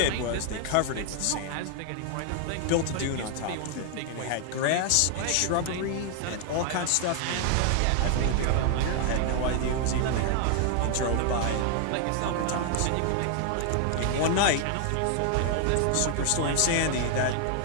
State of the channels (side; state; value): both; different; correlation 0.00